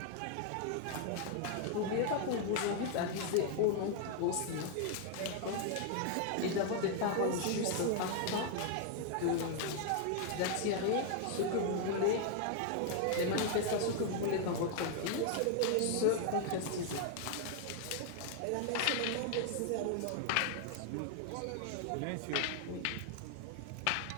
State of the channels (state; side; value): different; both; correlation 0.00